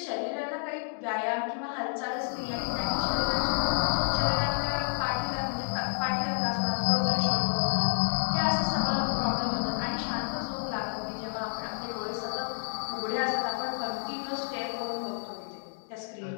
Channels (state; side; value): silent; right; 58 dB below the other